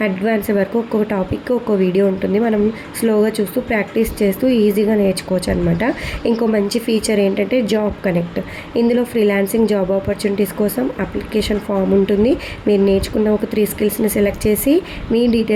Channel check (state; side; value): identical; both; correlation 1.00